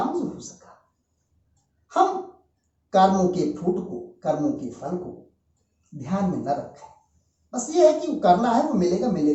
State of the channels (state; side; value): identical; both; correlation 1.00